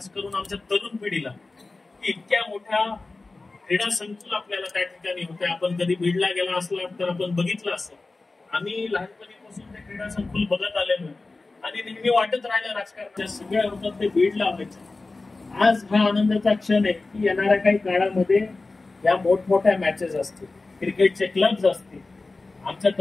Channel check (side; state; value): right; quieter; 3.5 dB